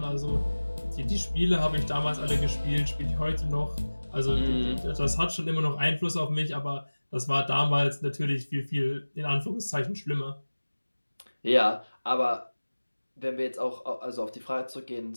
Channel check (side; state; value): both; inverted; correlation -1.00